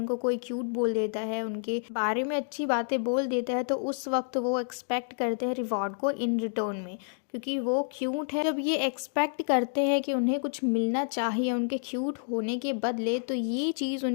कोई क्यूट बोल देता है, उनके बारे में अच्छी बातें बोल देता है, तो उस वक्त वो एक्सपेक्ट करते हैं रिवॉर्ड को इन रिटर्न में, क्योंकि वो क्यूट है। जब ये एक्सपेक्ट करते हैं कि उन्हें कुछ मिलना चाहिए उनके क्यूट होने के बदले, तो ये चीज़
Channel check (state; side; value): silent; right; digital silence